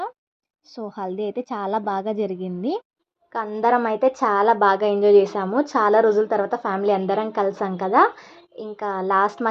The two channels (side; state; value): both; identical; correlation 1.00